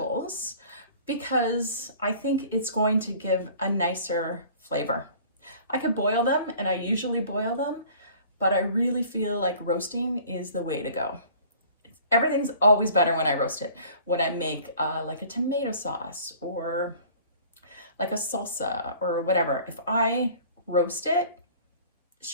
because I think it's going to give a nicer flavor. I could boil them, and I usually boil them, but I really feel like roasting is the way to go. Everything's always better when I roast it. When I make like a tomato sauce or like a salsa or whatever, if I roast it, it's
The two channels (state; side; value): inverted; both; correlation -0.49